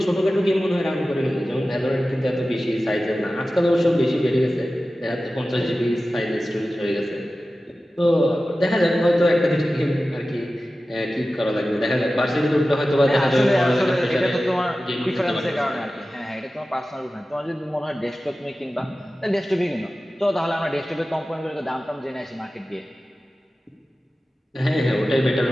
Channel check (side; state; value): both; normal; correlation 0.95